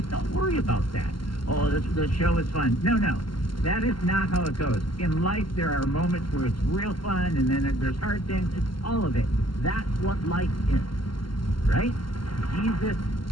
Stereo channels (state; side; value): late; right; 0.72 ms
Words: don't worry about that. Oh, the show is fun. No. That is not how it goes. In life, there are moments where it's real fun, and then there's hard things. It's all of it. That's what life is, right? Jesus